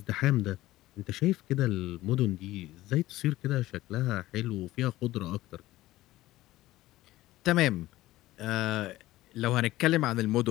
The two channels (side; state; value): right; quieter; 16.5 dB